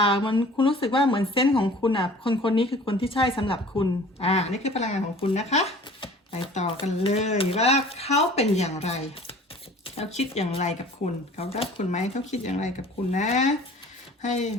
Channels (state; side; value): normal; both; correlation 0.47